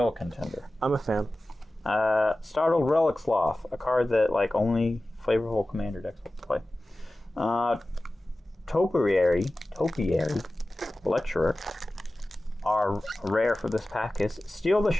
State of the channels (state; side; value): normal; both; correlation 0.96